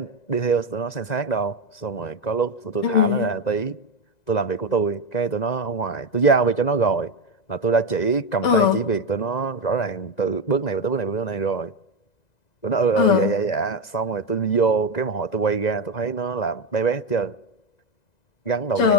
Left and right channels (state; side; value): late; right; 2.0 ms